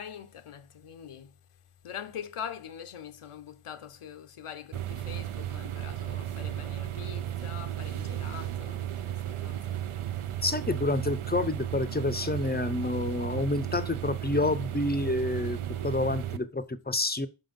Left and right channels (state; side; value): normal; both; correlation 0.31